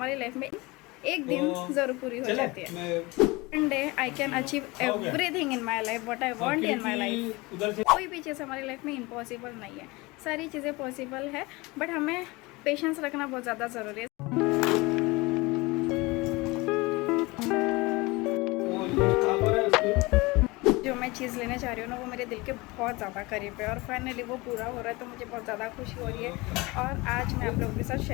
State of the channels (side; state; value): right; quieter; 23.5 dB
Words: लाइफ में एक दिन ज़रूर पूरी हो जाती है। One day I can achieve everything in my life what I want in my life. कोई भी चीज़ हमारी लाइफ में इम्पॉसिबल नहीं है, सारी चीज़ें पॉसिबल है, बट हमें पेशेंस रखना बहुत ज़्यादा ज़रूरी है। जो मैं चीज़ लेने जा रही हूँ ना, वो मेरे दिल के बहुत ज़्यादा करीब है, और फाइनली वो पूरा हो रहा है, तो मुझे बहुत ज़्यादा खुशी हो रही है। और आज मैं आप लोगों के साथ